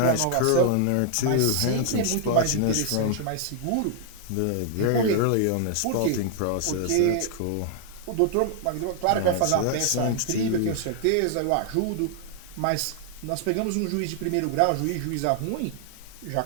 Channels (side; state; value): both; different; correlation 0.00